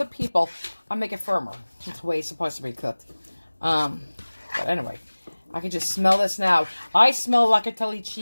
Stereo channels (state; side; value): inverted; both; correlation -1.00